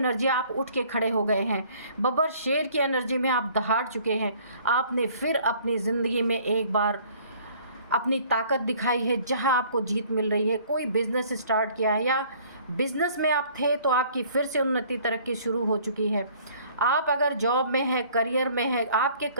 आप उठ के खड़े हो गए हैं। बब्बर शेर की एनर्जी में आप दहाड़ चुके हैं। आपने फिर अपनी ज़िंदगी में एक बार अपनी ताकत दिखाई है, जहां आपको जीत मिल रही है। कोई बिज़नेस स्टार्ट किया है या बिज़नेस में आप थे तो आपकी फिर से उन्नति तरक्की शुरू हो चुकी है। आप अगर जॉब में है, करियर में है, आपके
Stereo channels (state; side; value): inverted; both; correlation -0.56